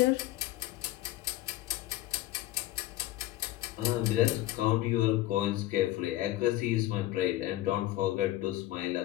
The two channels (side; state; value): right; quieter; 15.7 dB